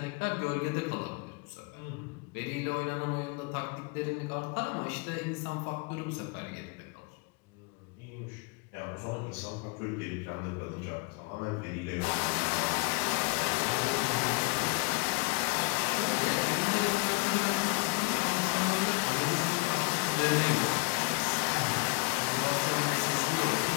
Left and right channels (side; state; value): right; quieter; 28.9 dB